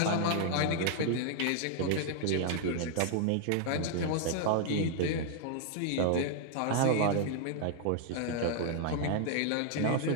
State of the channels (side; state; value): both; different; correlation -0.01